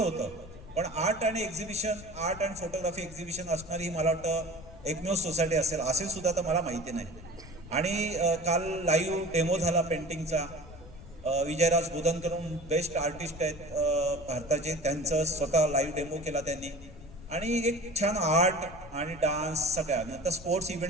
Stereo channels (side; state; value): left; noise; rumble, 17 dB below the sound